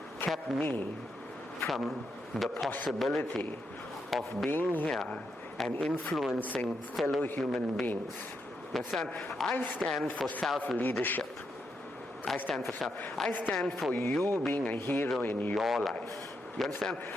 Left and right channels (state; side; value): normal; both; correlation 0.82